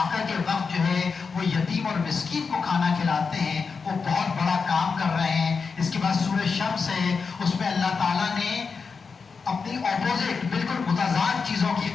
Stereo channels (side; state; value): right; quieter; 5.2 dB